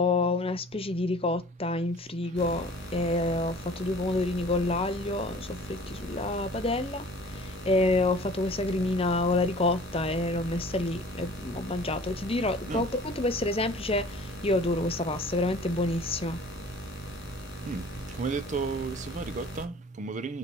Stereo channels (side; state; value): both; normal; correlation 0.47